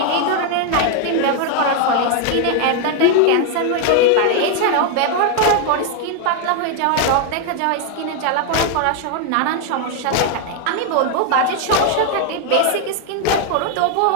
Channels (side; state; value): both; different; correlation 0.01